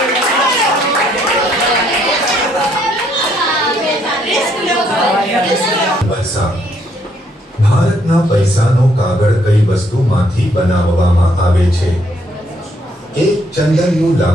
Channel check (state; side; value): normal; both; correlation 0.70